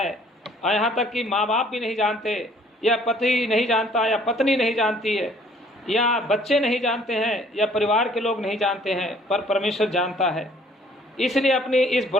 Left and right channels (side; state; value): both; normal; correlation 0.58